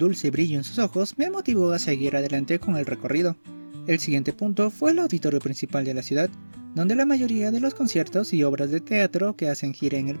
brillo en sus ojos me motivó a seguir adelante con el recorrido. El siguiente punto fue el auditorio principal de la ciudad, donde la mayoría de los conciertos y obras de teatro que hacen gira en el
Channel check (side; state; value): both; inverted; correlation -1.00